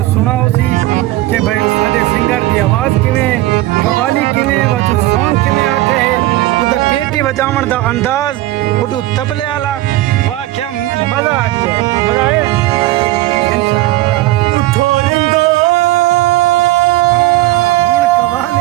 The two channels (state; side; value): quieter; left; 17.1 dB